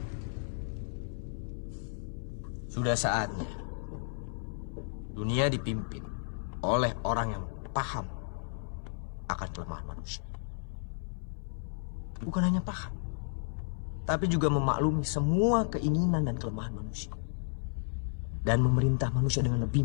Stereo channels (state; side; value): silent; right; 56 dB below the other